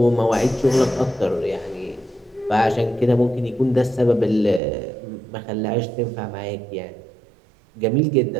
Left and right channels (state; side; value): drops out; left; at 4.6 s